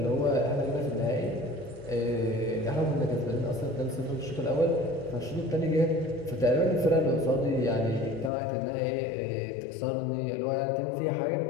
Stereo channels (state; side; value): drops out; right; at 8.3 s